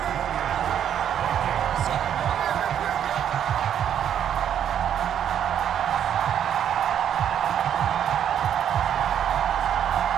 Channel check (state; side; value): quieter; left; 9.5 dB